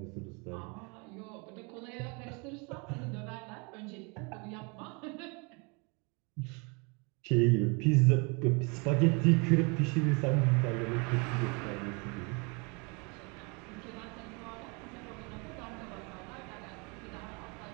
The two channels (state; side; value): quieter; left; 31.4 dB